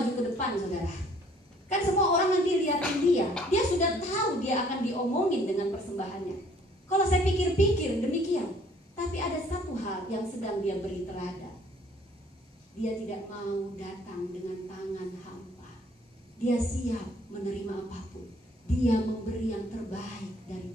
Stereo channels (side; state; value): both; normal; correlation 0.59